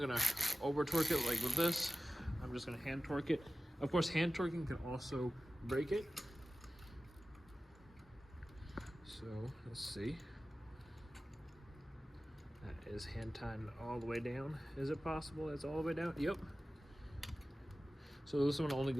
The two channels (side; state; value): both; normal; correlation 0.96